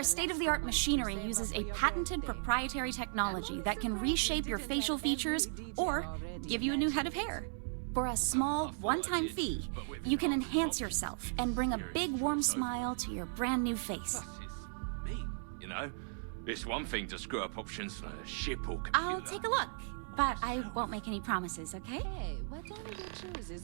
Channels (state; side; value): silent; left; digital silence